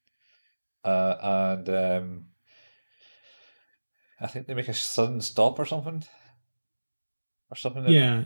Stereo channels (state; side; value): inverted; both; correlation -1.00